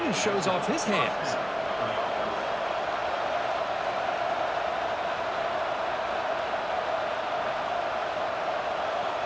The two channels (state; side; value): identical; both; correlation 1.00